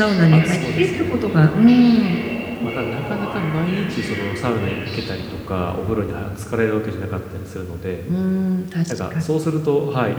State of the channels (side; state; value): both; identical; correlation 1.00